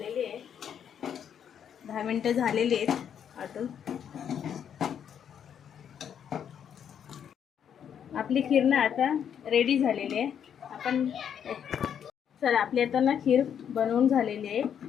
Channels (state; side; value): quieter; right; 8.5 dB